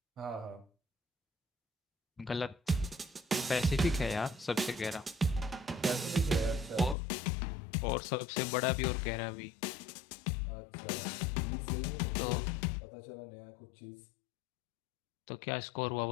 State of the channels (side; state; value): right; drops out; at 7.0 s